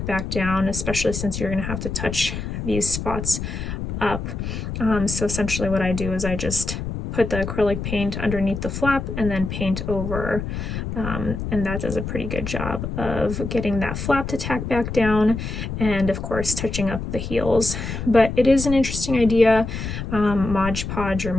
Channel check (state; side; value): noise; left; rumble, 5 dB below the sound